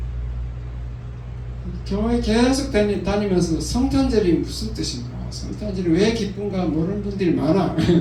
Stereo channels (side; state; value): both; identical; correlation 1.00